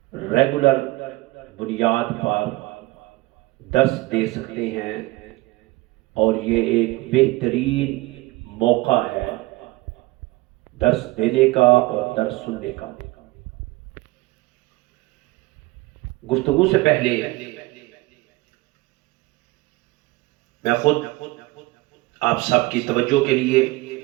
ریگولر بنیاد پر درس دے سکتے ہیں، اور یہ ایک بہترین موقع ہے درس دینے کا اور درس سننے کا۔ گفتگو سے پہلے میں خود آپ سب کی توجہ کے لیے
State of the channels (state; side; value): quieter; left; 21.2 dB